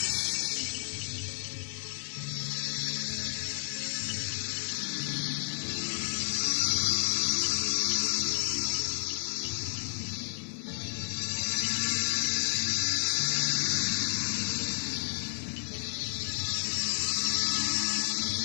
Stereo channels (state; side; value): silent; right; 57 dB below the other